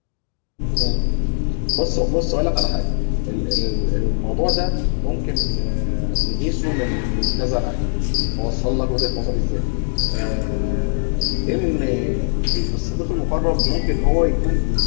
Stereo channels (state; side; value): silent; right; digital silence